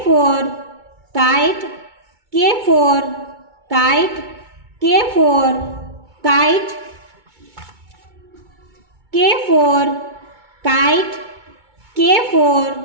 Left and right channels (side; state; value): left; late; 2.2 ms